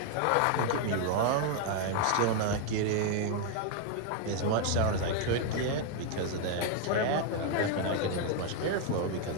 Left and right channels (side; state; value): both; different; correlation 0.00